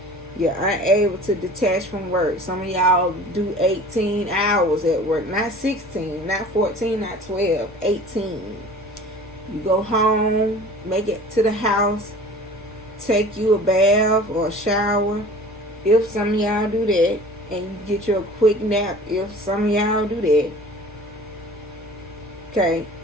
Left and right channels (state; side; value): normal; both; correlation 0.44